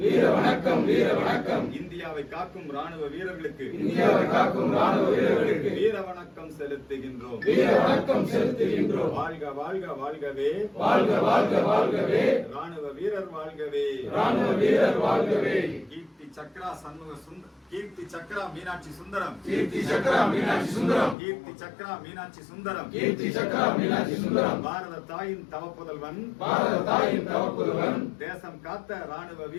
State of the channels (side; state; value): right; drops out; at 21.2 s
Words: வீர வணக்கம், வீர வணக்கம். இந்தியாவை காக்கும் ராணுவ வீரர்களுக்கு, இந்தியாவை காக்கும் ராணுவ வீரர்களுக்கு வீர வணக்கம் செலுத்துகின்றோம், வீர வணக்கம் செலுத்துகின்றோம். வாழ்க வாழ்க வாழ்கவே, வாழ்க வாழ்க வாழ்கவே, ராணுவ வீரர் வாழ்கவே, ராணுவ வீரர் வாழ்கவே. கீர்த்தி சக்ரா சண்முக சுந்தரம், கீர்த்தி சக்ரா மீனாட்சி சுந்தரம், கீர்த்தி சக்ரா மீனாட்சி சுந்தரம், கீர்த்தி சக்ரா மீனாட்சி சுந்தரம், கீர்த்தி சக்ரா மீனாட்சி சுந்தரம். பாரத தாயின் தவப்புதல்வன், பாரத தாயின் தவப்புதல்வன், தேசம் காத்த ராணுவ